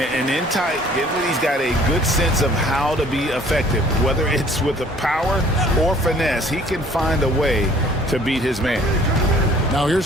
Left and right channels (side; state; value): both; normal; correlation 0.55